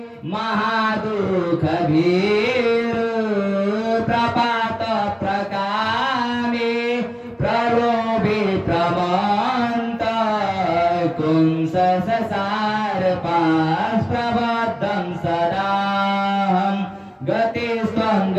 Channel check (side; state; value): both; identical; correlation 1.00